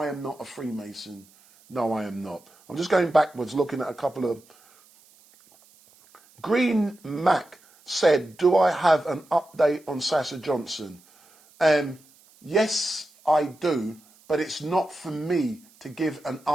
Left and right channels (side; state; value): right; noise; hiss, 29 dB below the sound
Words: am not a Freemason. No, I am not. I'm just going backwards, looking at a couple of... Green Mac said, do I have an update on Sasha Johnson? Yes, I do, but it's not for me to give an